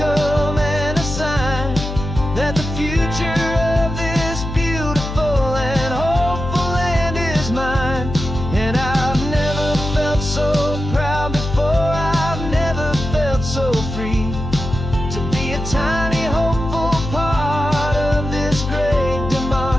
and a sign that the future of this beautiful and hopeful land is mine. And I've never felt so proud before, I've never felt so free, to be a tiny hopeful part of this great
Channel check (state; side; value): noise; left; hum, 6 dB below the sound